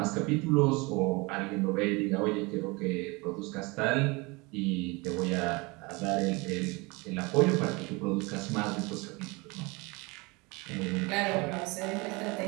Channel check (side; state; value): left; quieter; 26.1 dB